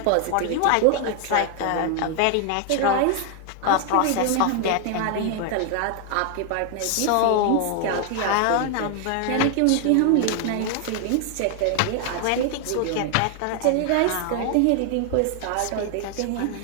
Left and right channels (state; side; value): different; both; correlation 0.00